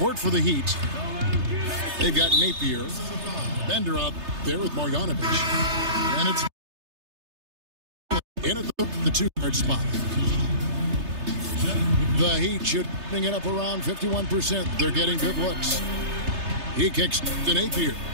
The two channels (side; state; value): left; late; 3.3 ms